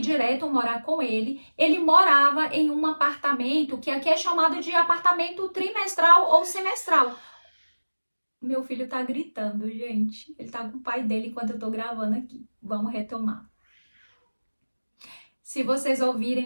morar com ele. Ele morava em um apartamento que aqui é chamado de apartamento trimestral ou semestral. Meu filho tá gritando, gente. Ele tá com o pai dele enquanto eu tô gravando aqui. Vamos retomar. Se vocês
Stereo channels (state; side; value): inverted; both; correlation -1.00